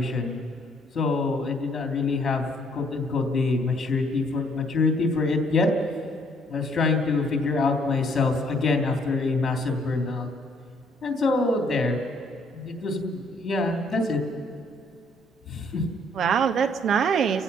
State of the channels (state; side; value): normal; both; correlation 0.65